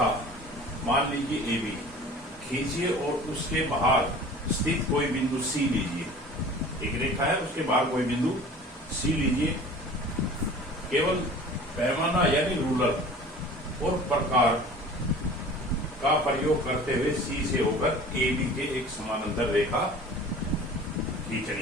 मान लीजिए AB खींचिए और उसके बाहर स्थित कोई बिंदु C लीजिए। एक रेखा है, उसके बाहर कोई बिंदु C लीजिए। केवल पैमाना यानी रूलर और प्रकार का प्रयोग करते हुए C से होकर AB के एक समानांतर रेखा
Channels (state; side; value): normal; both; correlation 0.43